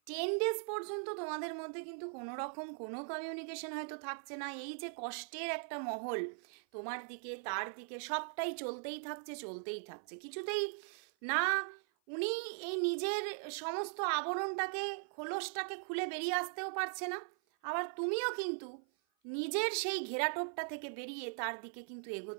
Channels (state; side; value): silent; left; 51 dB below the other